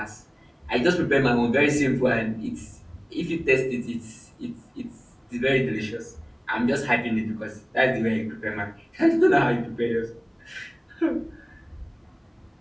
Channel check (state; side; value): identical; both; correlation 1.00